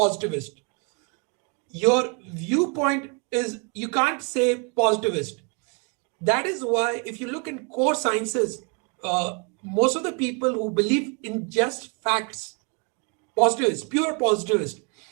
Your viewpoint is, you can't say positivist. That is why if you look in core sciences, most of the people who believe in just facts, positivist, pure positivist.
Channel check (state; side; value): quieter; left; 34.3 dB